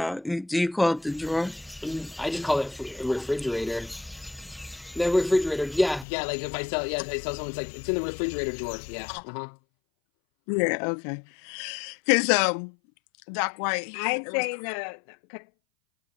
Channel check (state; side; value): drops out; right; at 6.1 s